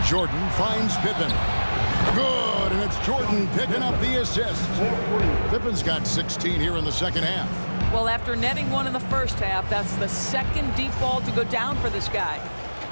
Jordan finds Pippen. Good, and it's Jordan picking up the assist. Pippen's got 16 here in the second half. Well, after netting one in the first half, that's the second deep ball to go down for this guy.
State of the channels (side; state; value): both; inverted; correlation -1.00